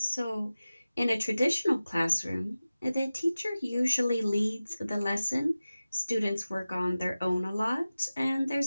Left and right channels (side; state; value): both; inverted; correlation -0.96